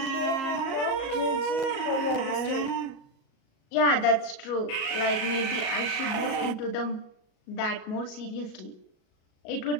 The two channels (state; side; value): late; right; 37 ms